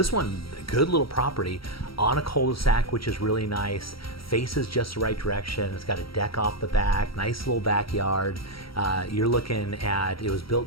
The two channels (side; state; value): right; late; 0.75 ms